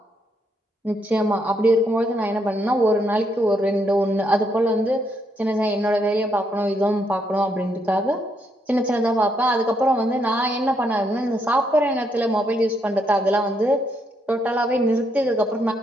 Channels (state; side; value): normal; both; correlation 0.75